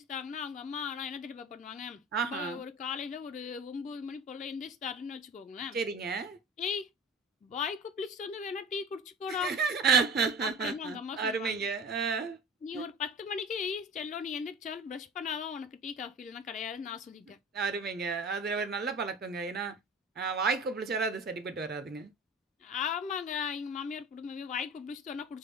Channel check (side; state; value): both; normal; correlation 0.38